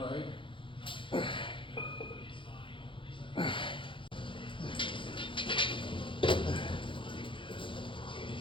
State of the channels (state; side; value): late; right; 0.25 ms